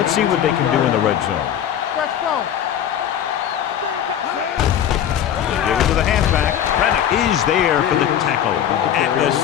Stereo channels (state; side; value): quieter; right; 9.9 dB